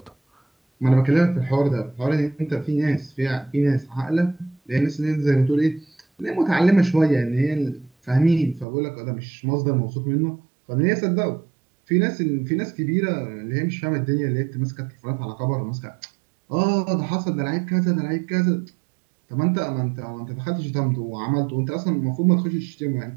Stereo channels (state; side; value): drops out; left; at 8.7 s